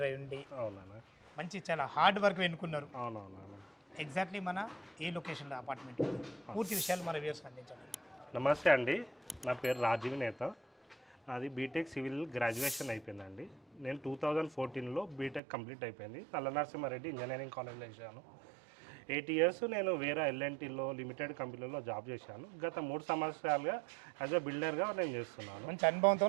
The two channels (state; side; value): drops out; left; at 15.4 s